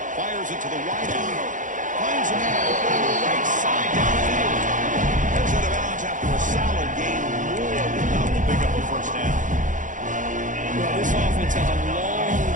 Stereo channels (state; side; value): late; left; 0.37 ms